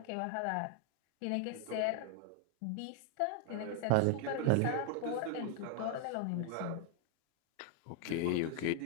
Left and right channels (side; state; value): both; different; correlation 0.00